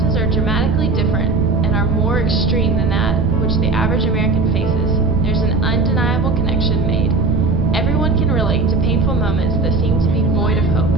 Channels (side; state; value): right; noise; rumble, 2 dB below the sound